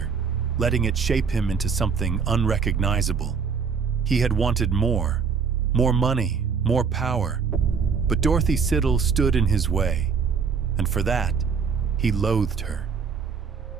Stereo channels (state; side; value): quieter; left; 6.0 dB